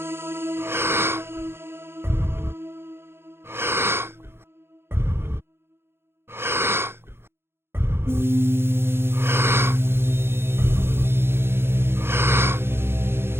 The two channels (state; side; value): late; left; 0.11 ms